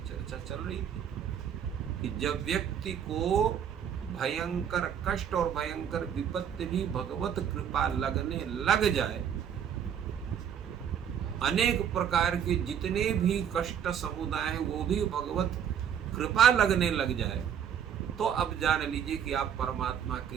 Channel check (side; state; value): left; quieter; 8.6 dB